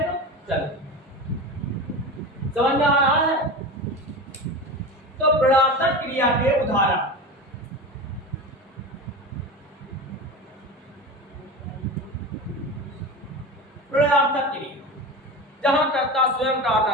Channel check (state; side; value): normal; both; correlation 0.27